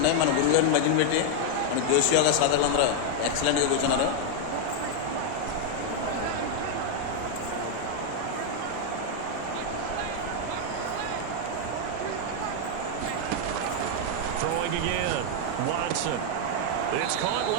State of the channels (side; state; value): both; different; correlation 0.00